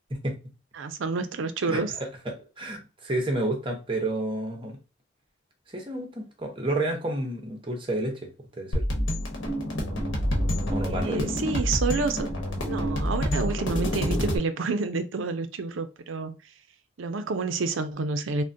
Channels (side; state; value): both; normal; correlation 0.54